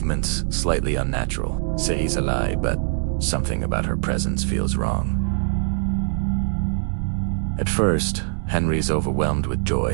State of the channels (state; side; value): silent; left; 64 dB below the other